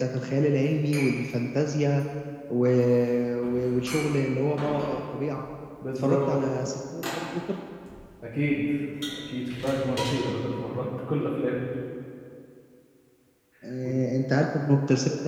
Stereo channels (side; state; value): both; identical; correlation 1.00